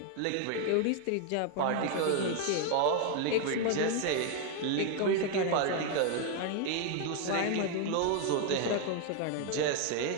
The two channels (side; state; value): both; different; correlation 0.01